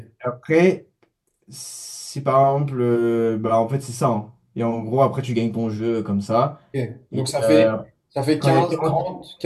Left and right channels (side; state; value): both; identical; correlation 1.00